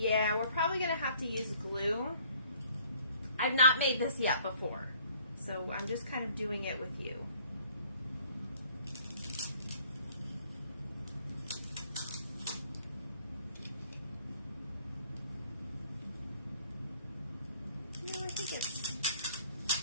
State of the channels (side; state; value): both; inverted; correlation -0.59